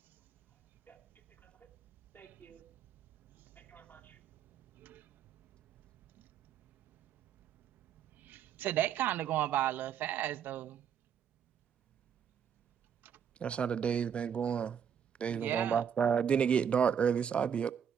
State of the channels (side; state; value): left; quieter; 8.2 dB